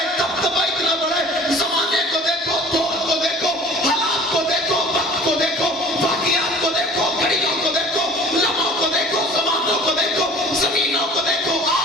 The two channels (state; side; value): normal; both; correlation 0.46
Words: دبدبہ اتنا بڑا ہے۔ زمانے کو دیکھو، دور کو دیکھو، حالات کو دیکھو، وقت کو دیکھو، واقعات کو دیکھو، گھڑیوں کو دیکھو، لمحوں کو دیکھو، زمانوں کو دیکھو، زمینوں کو دیکھو۔